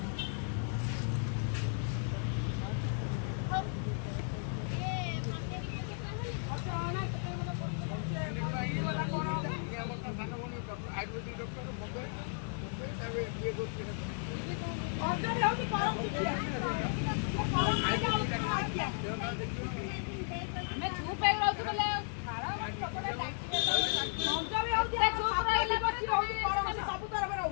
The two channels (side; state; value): right; silent; 55 dB below the other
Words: आयुर्वेदिक डॉक्टर मुंबई तावे ये गोष्टी ऑर्डर होती परम मैं चुप है रहू बोले खारा पकड़े डाक्टर मौजा भी होती है चुप रहिला बच्ची होती परम सब तरफ रहू